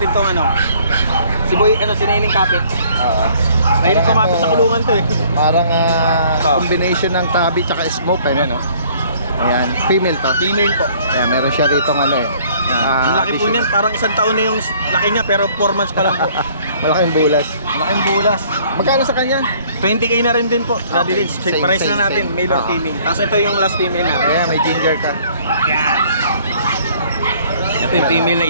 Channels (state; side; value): inverted; both; correlation -0.58